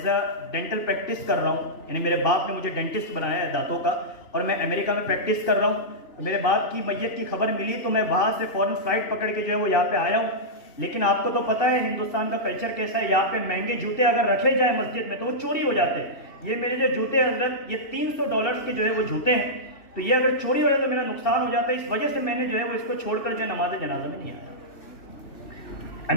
اے ڈینٹل پریکٹس کر رہا ہوں، یعنی میرے باپ نے مجھے ڈینٹسٹ بنایا ہے دانتوں کا، اور میں امریکہ میں پریکٹس کر رہا ہوں۔ میرے باپ کی میت کی خبر ملی تو میں وہاں سے فوراً فلائٹ پکڑ کے جو ہے وہ یہاں پہ آیا ہوں، لیکن آپ کو تو پتہ ہے ہندوستان کا کلچر کیسا ہے، یہاں پہ مہنگے جوتے اگر رکھے جائیں مسجد میں تو وہ چوری ہو جاتے ہیں۔ یہ میرے جو جوتے ہیں حضرت یہ $300 کے جو ہے وہ جوتے ہیں، تو یہ اگر چوری ہو جائے تو میرا نقصان ہو جاتا ہے، اس وجہ سے میں نے جو ہے وہ اس کو چھوڑ کر جو ہے نماز جنازہ میں نہیں آیا۔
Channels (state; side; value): late; right; 2.7 ms